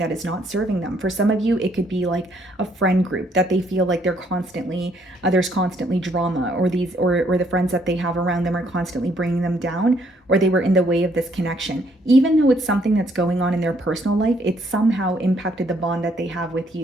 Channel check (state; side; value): normal; both; correlation 0.68